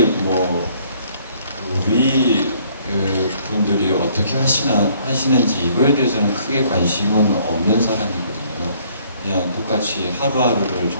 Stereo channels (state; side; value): inverted; both; correlation -0.62